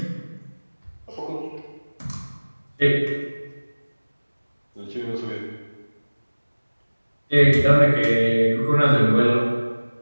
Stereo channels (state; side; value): inverted; both; correlation -1.00